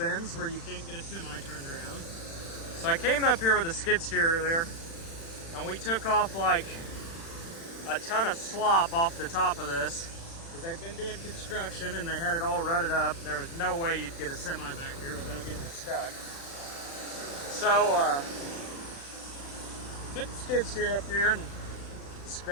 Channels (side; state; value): right; late; 36 ms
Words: where you can't get a semi turned around. So I came up here with a skid steer earlier, and we took off like a ton of slop off the top of this because they've been doing construction and they had it all rutted up. There was no way you'd get a semi back here without getting stuck. So took the skid steer up here and